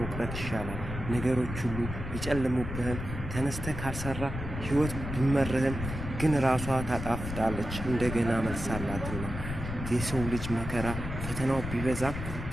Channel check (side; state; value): left; noise; rumble, 6 dB below the sound